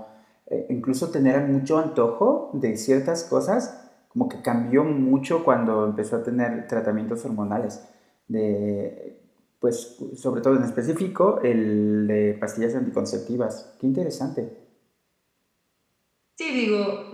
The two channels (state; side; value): identical; both; correlation 1.00